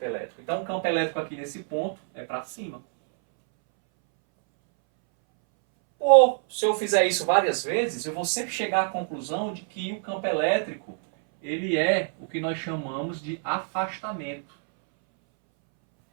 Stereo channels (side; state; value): left; silent; 61 dB below the other